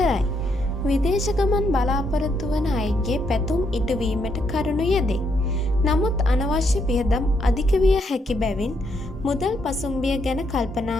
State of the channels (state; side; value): normal; both; correlation 0.76